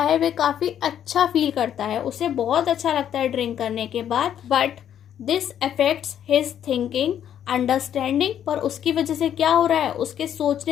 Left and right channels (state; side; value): quieter; right; 9.9 dB